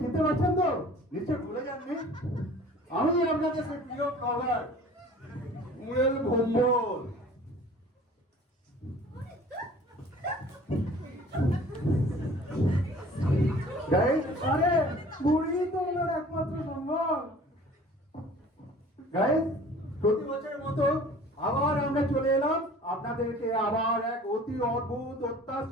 পারছেন তো? নিশ্চয় ভুলে যাননি। আমি আপনাদের সেই প্রিয় ব্লগার মুরেল ভম্বল। গাইস, আরে বুড়ি তো ওনার একমাত্র সম্ভব। গাইস, প্রতি বছরের মতো আবার আমরা চলে এলাম আপনাদেরকে আবার এক অতি অদ্ভুত,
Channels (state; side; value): normal; both; correlation 0.47